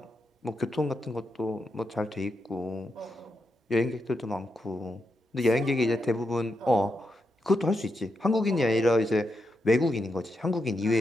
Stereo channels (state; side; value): normal; both; correlation 0.84